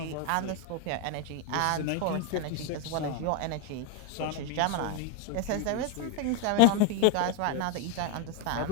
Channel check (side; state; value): both; different; correlation 0.01